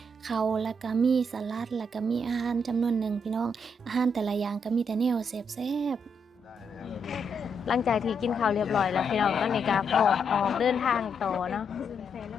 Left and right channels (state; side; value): normal; both; correlation 0.78